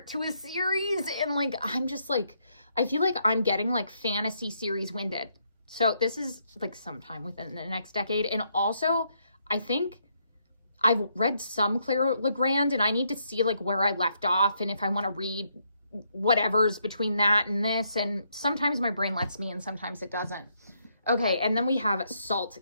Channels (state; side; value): inverted; both; correlation -0.75